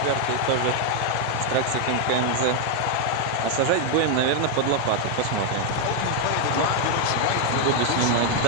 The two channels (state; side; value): different; both; correlation 0.00